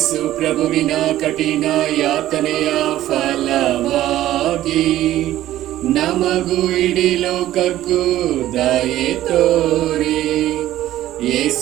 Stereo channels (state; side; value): quieter; left; 13.9 dB